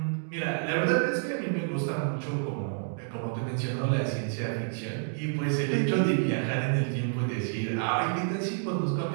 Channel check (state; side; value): silent; left; digital silence